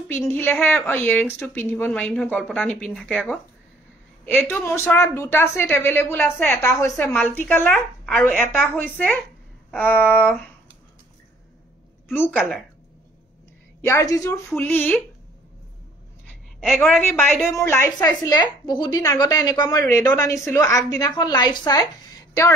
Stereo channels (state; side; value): normal; both; correlation 0.59